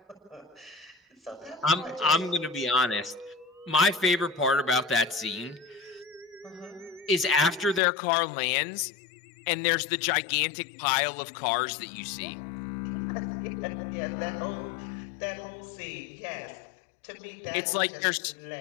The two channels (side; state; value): right; drops out; at 7.8 s